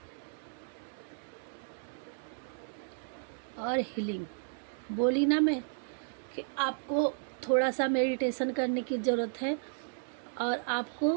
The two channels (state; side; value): silent; left; digital silence